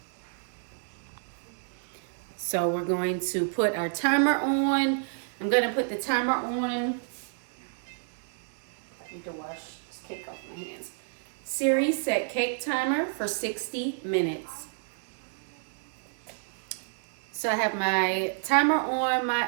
So we're going to put our timer on. I'm going to put the timer on. I need to wash this cake off my hands. Siri, set cake timer for 60 minutes. So I have my timer on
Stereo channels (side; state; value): left; silent; 57 dB below the other